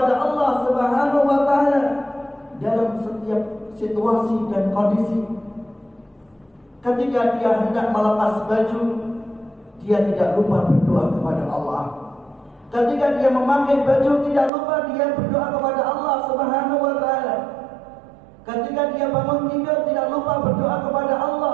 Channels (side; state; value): left; drops out; at 14.5 s